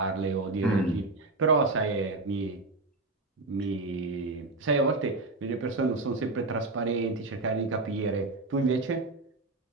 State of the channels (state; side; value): quieter; left; 3.2 dB